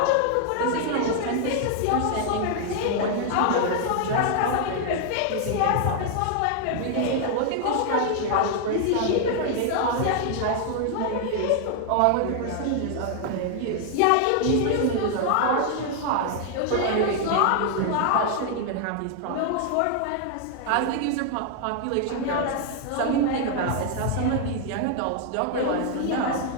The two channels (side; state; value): both; different; correlation 0.00